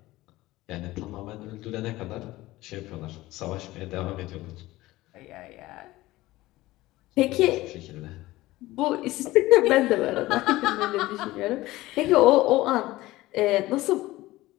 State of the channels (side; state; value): right; quieter; 18.0 dB